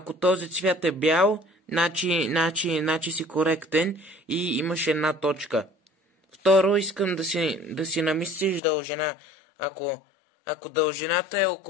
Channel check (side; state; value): right; drops out; at 8.6 s